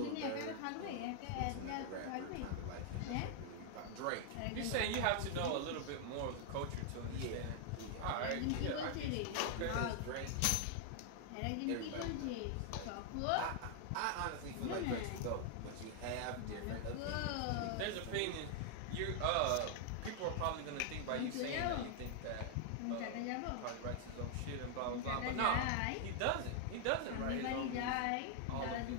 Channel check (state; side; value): different; both; correlation 0.00